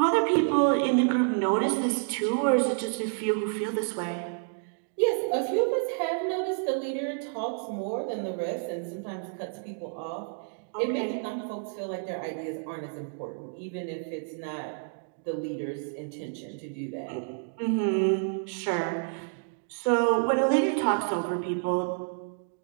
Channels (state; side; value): silent; left; digital silence